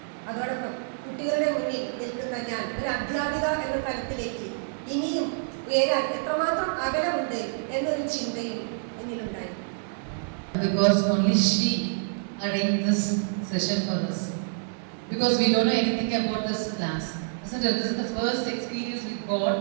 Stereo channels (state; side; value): silent; left; digital silence